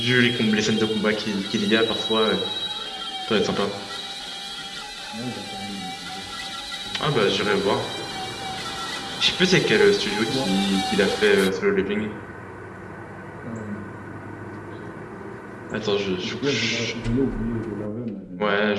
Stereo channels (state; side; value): identical; both; correlation 1.00